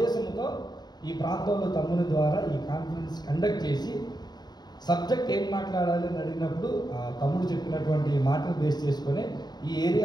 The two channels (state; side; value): late; right; 0.20 ms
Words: ఈ ప్రాంతంలో తమ్ముని ద్వారా ఈ కాన్ఫరెన్స్ కండక్ట్ చేసి సబ్జెక్ట్ ఏం మాట్లాడాలి అని అడిగినప్పుడు తమ్ముడు చెప్పినటువంటి మాటలు బేస్ చేసుకొని ఈ